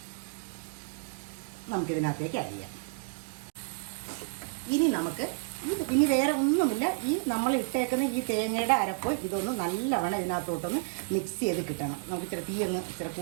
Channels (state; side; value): silent; left; digital silence